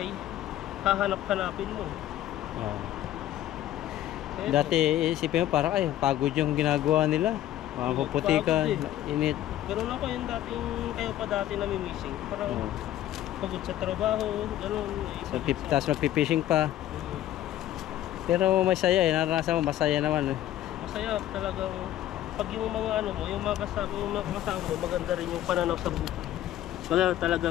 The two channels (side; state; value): right; quieter; 13.0 dB